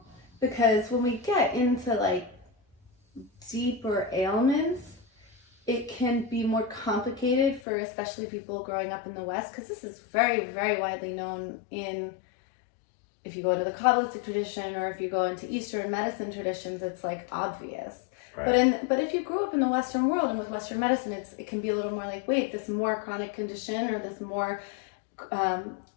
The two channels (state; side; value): drops out; right; at 7.6 s